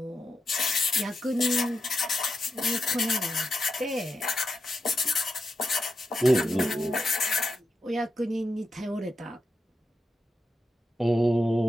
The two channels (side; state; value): both; normal; correlation 0.87